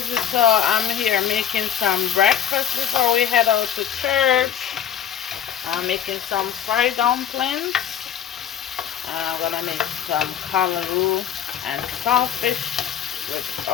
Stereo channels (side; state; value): right; quieter; 9.3 dB